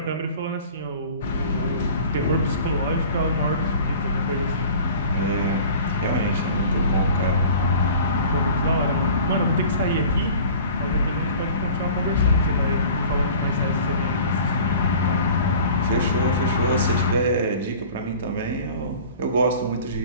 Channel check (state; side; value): inverted; both; correlation -0.44